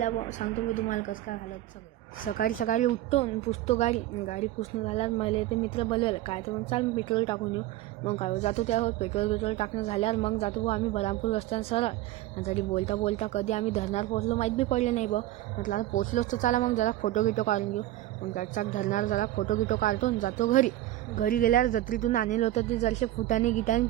बो. सांगतो मी तुम्हाला कसं काय हालत सगळं. सकाळी सकाळी उठतो आणि पुसतो गाडी. गाडी पुसणं झाल्यावर मला ते मित्र बोलवलं काय तर मग चाल पेट्रोल टाकून येऊ. मग काय जातो त्यावर पेट्रोल टाकणं झाल्यावर मग जातो बो आम्ही बरामपूर रस्त्यानं सरळ. आणि तरी बोलता बोलता कधी आम्ही धरणार पोहोचलो माहीत बी पडले नाही बा. म्हटलं आता पोचलोच तर चला मग जरा फोटो गिटो काढून घेऊ. मग चाक धरणार जरा फोटो गिटो काढतो आणि जातो घरी. घरी गेल्यावर जत्रेतून आणलं होतं ते जरसे फुटाने गिटाने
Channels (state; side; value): quieter; left; 14.9 dB